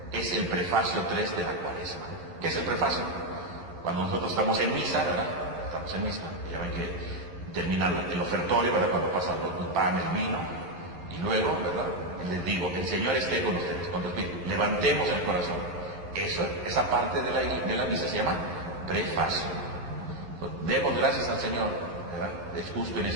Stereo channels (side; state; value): left; late; 11 ms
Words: es el prefacio 3 de la Cuaresma. ¿Qué es el prefacio? Cuando nosotros estamos en misa, ¿verdad? Estamos en misa, ya ven que termina el ofertorio, ¿verdad? Cuando pasa el pan, el vino, y luego, ¿verdad? Les digo, el Señor esté con ustedes, con los espíritus. Levantemos el corazón. Esa parte de la misa se llama prefacio. Pues, demos gracias al Señor, ¿verdad? Es justo y